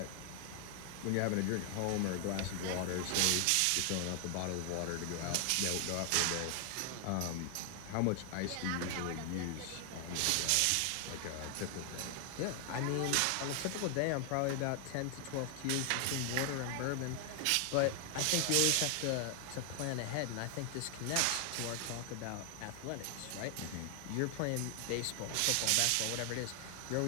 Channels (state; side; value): different; both; correlation 0.00